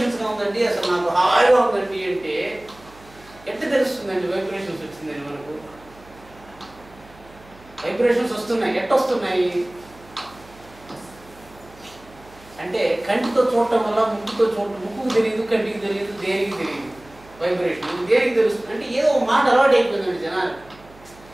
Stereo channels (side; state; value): right; noise; hum, 24 dB below the sound